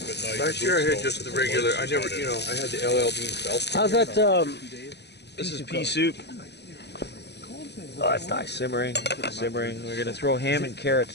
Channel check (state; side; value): late; right; 0.49 ms